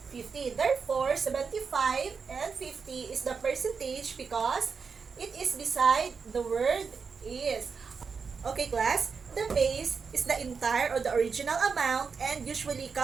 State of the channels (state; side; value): quieter; left; 5.5 dB